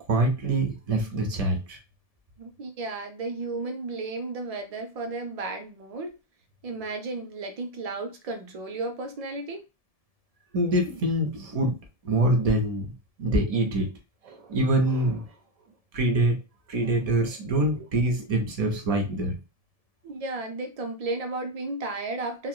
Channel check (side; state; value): left; late; 1.7 ms